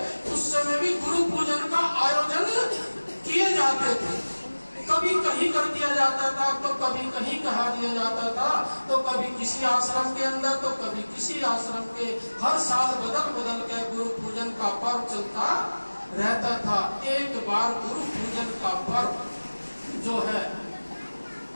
उस समय भी गुरु पूजन का आयोजन किए जाते थे। कभी कहीं कर दिया जाता था, तो कभी कहीं कहा दिया जाता था, तो कभी किसी आश्रम के अंदर, तो कभी किसी आश्रम के। हर साल बदल बदल के गुरु पूजन का पर्व चलता रहता था। एक बार गुरु पूजन का पर्व जो है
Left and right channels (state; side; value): inverted; both; correlation -1.00